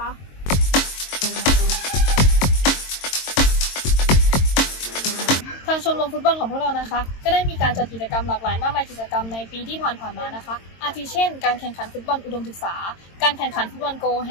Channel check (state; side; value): late; right; 22 ms